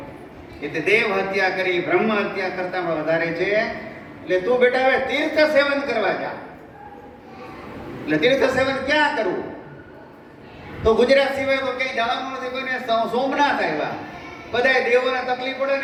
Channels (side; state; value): both; identical; correlation 1.00